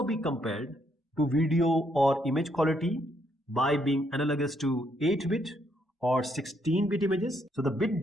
be compared to video or image quality by being analogous to 8-bit or 16-bit images. So the bit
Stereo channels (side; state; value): both; normal; correlation 0.74